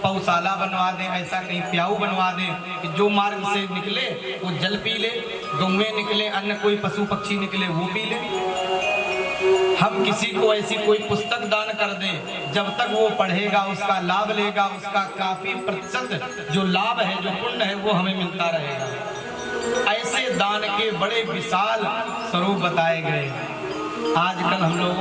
पौशाला बनवा दें, ऐसा कहीं प्याऊ बनवा दें कि जो मार्ग से निकले वो जल पी ले, गौएं निकले, अन्य कोई पशु पक्षी निकले वो पी ले। हम किसी को ऐसी कोई पुस्तक दान कर दें, जब तक वो पढ़ेगा उसका लाभ लेगा, उसका काफी प्रतिशत जो लाभ है, जो पुण्य है, वो हमें मिलता रहेगा। ऐसे दान के बड़े विशाल स्वरूप बताए गए। आजकल हम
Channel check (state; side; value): identical; both; correlation 1.00